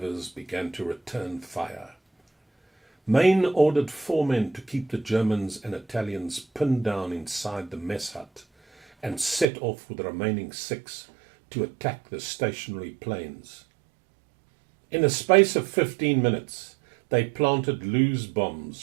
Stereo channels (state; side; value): drops out; left; at 9.5 s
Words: began to return fire. Mayne ordered 4 men to keep the Germans and Italians pinned down inside the mess hut and set off with the remaining 6 to attack the stationary planes. In a space of 15 minutes, they planted loose